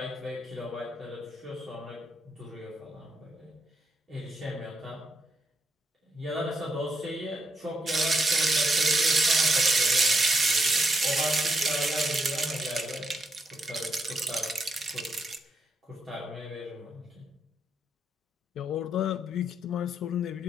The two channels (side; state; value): both; normal; correlation 0.78